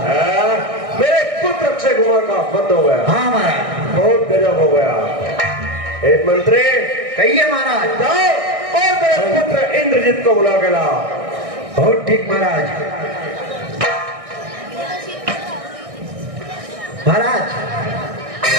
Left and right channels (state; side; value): late; left; 1.6 ms